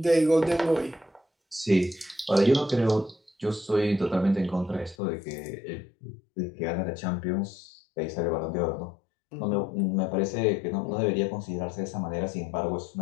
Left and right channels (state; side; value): drops out; right; at 5.0 s